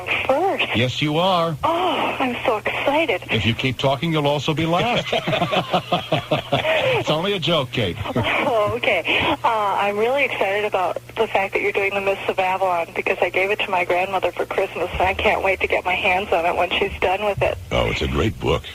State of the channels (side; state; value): both; identical; correlation 1.00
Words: first. Yes, you are. Oh, I'm so excited. If you keep talking, you'll also be last. It's only a joke, Kate. Oh, okay. I'm really excited about the fact that you're doing the Mists of Avalon, because I gave it to my grandmother for Christmas, and I can't wait to get my hands on it when she's done with it. Oh, it's a great book.